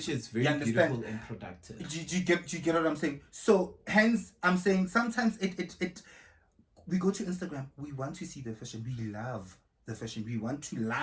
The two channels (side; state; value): both; identical; correlation 1.00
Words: Which is very beautiful and productive. Do you get what I'm saying? So hence, I'm saying sometimes we go to Instagram, we want to see the fashion. We love the fashion. We want to